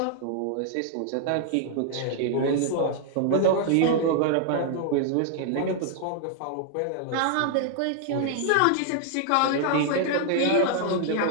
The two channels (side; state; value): both; different; correlation 0.00